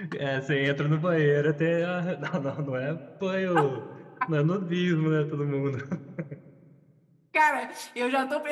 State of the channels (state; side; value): identical; both; correlation 1.00